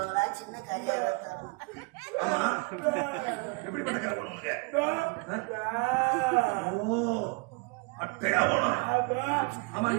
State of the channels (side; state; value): left; quieter; 30.4 dB